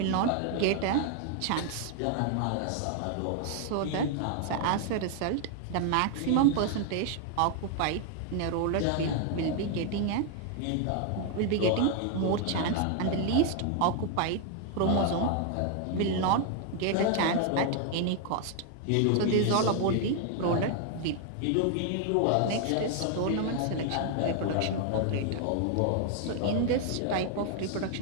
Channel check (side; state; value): both; different; correlation 0.00